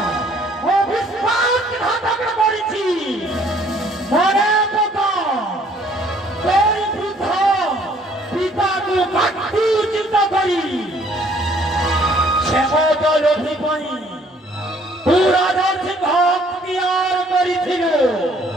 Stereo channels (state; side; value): normal; both; correlation 0.60